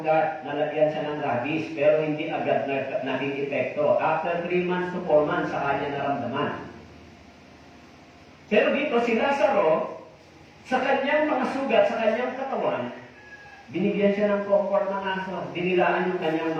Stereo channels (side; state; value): both; identical; correlation 1.00